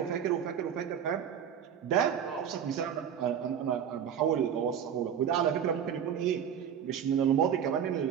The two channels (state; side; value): quieter; left; 8.6 dB